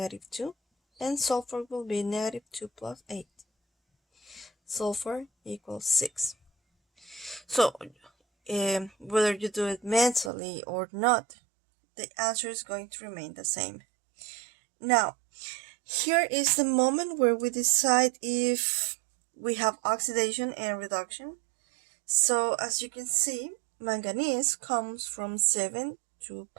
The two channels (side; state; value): left; drops out; at 10.3 s